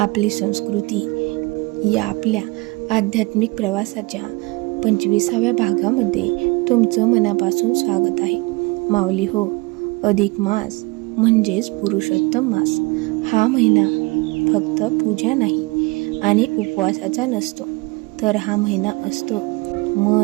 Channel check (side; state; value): left; quieter; 25.2 dB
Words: संस्कृती या आपल्या आध्यात्मिक प्रवासाच्या 25व्या भागामध्ये तुमचं मनापासून स्वागत आहे. माऊली हो, अधिक मास म्हणजेच पुरुषोत्तम मास हा महिना फक्त पूजा नाही आणि उपवासाचा नसतो, तर हा महिना असतो